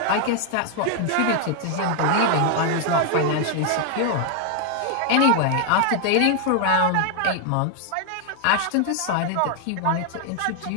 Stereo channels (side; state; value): both; different; correlation 0.00